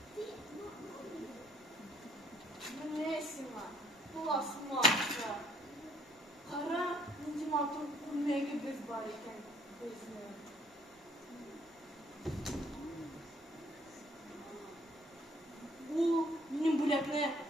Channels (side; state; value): both; normal; correlation 0.63